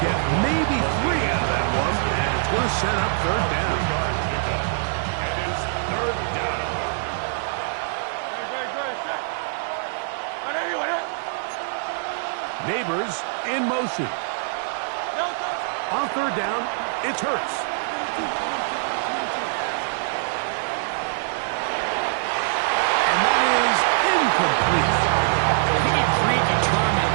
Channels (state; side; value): silent; left; digital silence